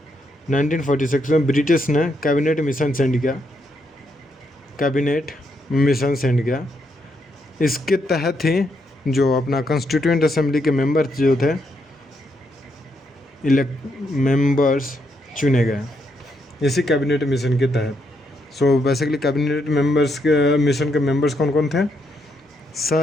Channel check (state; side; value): normal; both; correlation 0.78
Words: 1946 में ब्रिटिश ने कैबिनेट मिशन सेंड किया। इसके तहत ही जो अपना कॉन्स्टिट्यूएंट असेंबली के मेंबर्स जो थे मेंबर्स चुने गए इसी कैबिनेट मिशन के तहत। सो बेसिकली कैबिनेट मेंबर्स के मिशन के मेंबर्स कौन कौन थे?